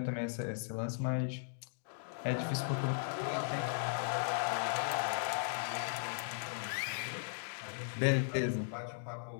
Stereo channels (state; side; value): silent; right; digital silence